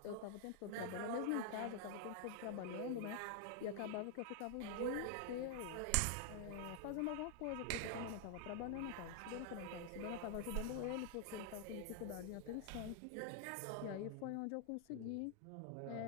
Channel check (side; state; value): both; different; correlation 0.00